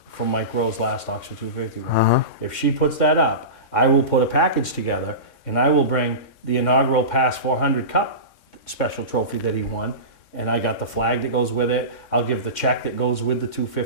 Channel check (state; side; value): late; right; 3.6 ms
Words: from Mike Rowe's last Oxford 250 win. If she puts that up, I will put a package together and I will bring the inaugural Pass 400 Cup special trophy that he won. And I got the flag that goes with it. I'll give the check that goes with the